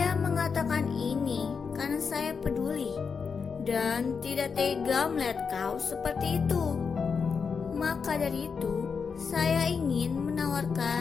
mengatakan ini karena saya peduli dan tidak tega melihat kau seperti itu. Maka dari itu, saya ingin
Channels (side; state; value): right; quieter; 5.7 dB